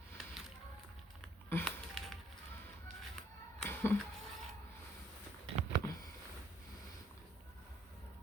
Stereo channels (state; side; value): normal; both; correlation 0.63